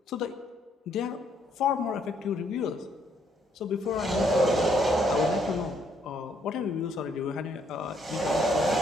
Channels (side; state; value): both; normal; correlation 0.69